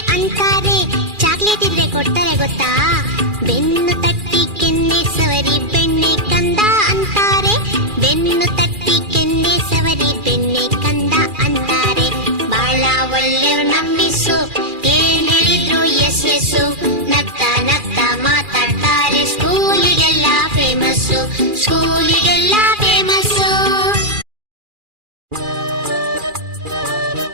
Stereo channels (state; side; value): late; left; 2.4 ms